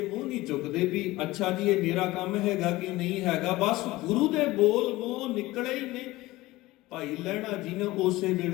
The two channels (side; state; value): right; quieter; 18.8 dB